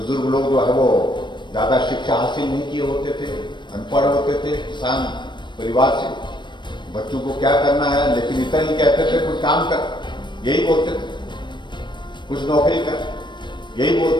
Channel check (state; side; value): late; right; 0.22 ms